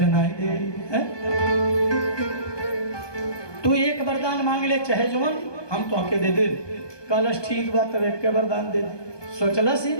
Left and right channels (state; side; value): late; right; 1.2 ms